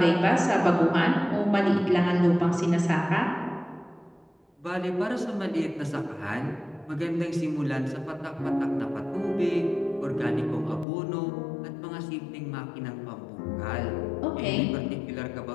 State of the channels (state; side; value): drops out; right; at 10.9 s